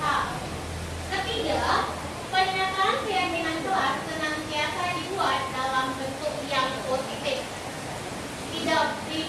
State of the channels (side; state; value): both; identical; correlation 1.00